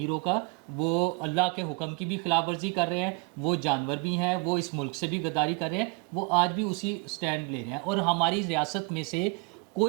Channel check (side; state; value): left; quieter; 30.0 dB